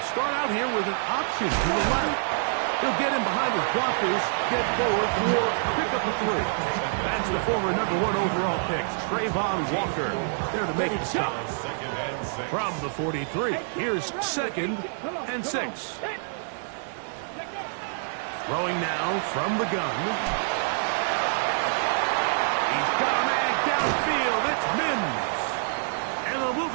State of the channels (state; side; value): silent; left; digital silence